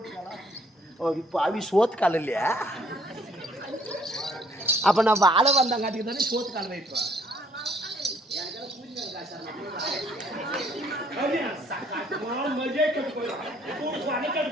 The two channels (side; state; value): both; normal; correlation 0.63